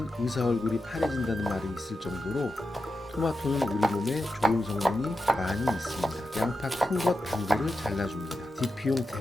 의사 얼굴이 파래진다는 말이 있을 정도로 토마토는 우리 몸에 좋은 성분이 많이 있습니다. 양파 큰 것 반개를 잘라줍니다. 디피용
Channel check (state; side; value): normal; both; correlation 0.89